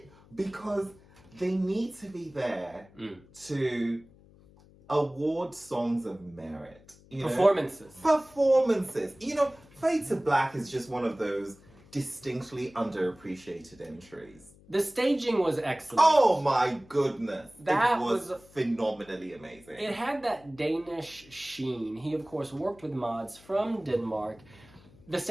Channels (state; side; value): noise; left; hum, 25 dB below the sound